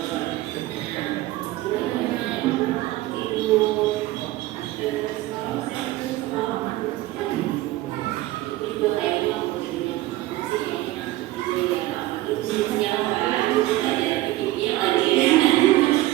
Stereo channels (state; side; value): quieter; left; 16.9 dB